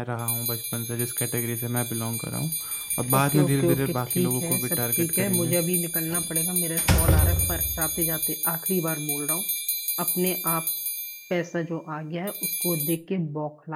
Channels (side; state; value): both; identical; correlation 1.00